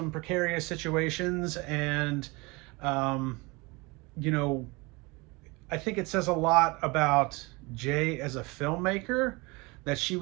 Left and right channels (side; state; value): left; quieter; 25.7 dB